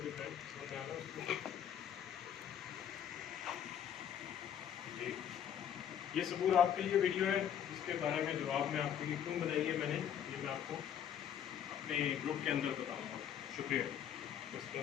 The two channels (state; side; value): quieter; right; 9.3 dB